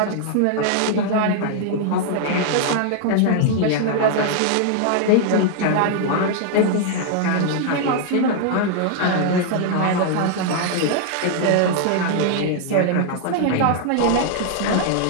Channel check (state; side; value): different; both; correlation 0.00